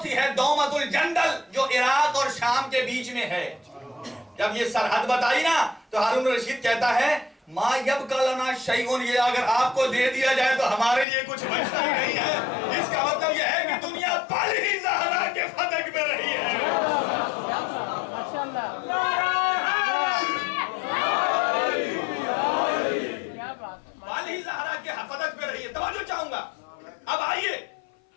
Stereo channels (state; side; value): drops out; right; at 11.1 s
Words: ہے دومت الجندل جو عراق اور شام کے بیچ میں ہے. جب یہ سرحد بتائی نا تو ہارون الرشید کہتا ہے ما یبقى لنا شیء, یہ اگر آپ کو دے دیا جائے تو ہمارے لیے کچھ بچتا ہی نہیں ہے. اس کا مطلب یہ ہے کہ دنیا پل ہی زہرا کے فدق میں رہی ہے. پل ہی زہرا کے فدق میں رہی ہے. توجہ چاہوں گا. اب آئیے